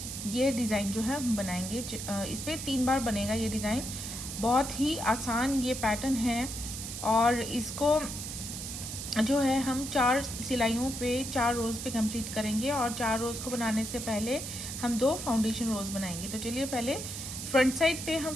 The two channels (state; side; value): noise; right; hiss, 7 dB below the sound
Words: ये डिज़ाइन जो है हम बनाएंगे। इस पर 3 बार बनेगा ये डिज़ाइन। बहुत ही आसान ये पैटर्न है और इसको जो है हम 4 सिलाइयों पे 4 रोज़ पे कंप्लीट करेंगे और 4 रोज़ को बनाने से पहले हम 2 फाउंडेशन रोज़ बनाएंगे। तो चलिए पहले फ्रंट साइड पे हम